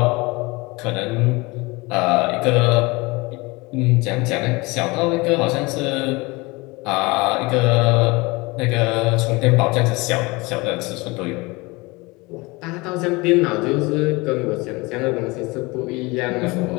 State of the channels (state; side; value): quieter; right; 24.3 dB